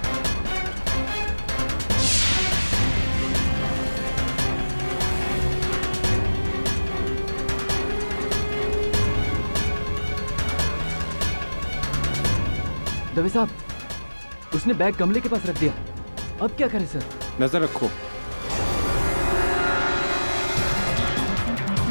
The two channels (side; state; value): both; inverted; correlation -1.00